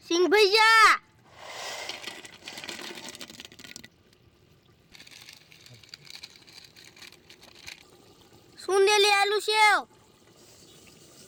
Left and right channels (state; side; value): identical; both; correlation 1.00